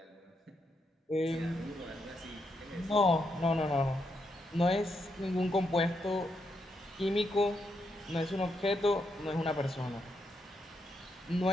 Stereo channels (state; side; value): normal; both; correlation 0.80